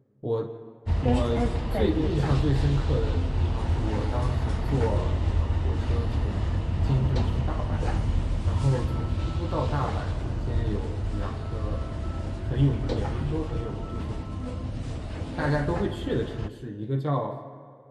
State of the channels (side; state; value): both; identical; correlation 1.00